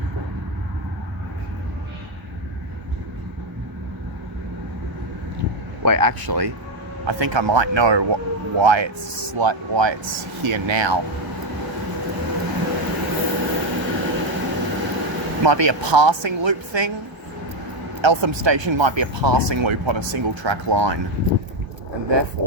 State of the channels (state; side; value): late; left; 1.0 ms